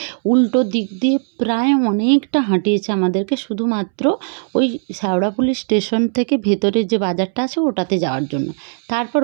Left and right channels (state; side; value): silent; left; 67 dB below the other